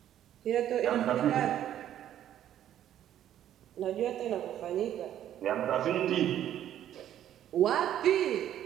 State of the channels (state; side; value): quieter; left; 11.2 dB